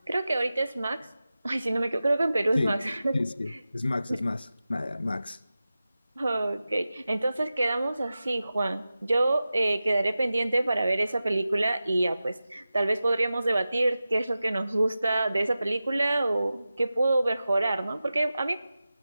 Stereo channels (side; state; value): both; inverted; correlation -0.94